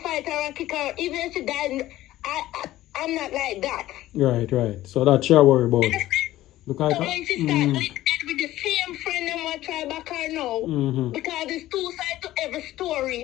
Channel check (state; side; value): quieter; right; 15.2 dB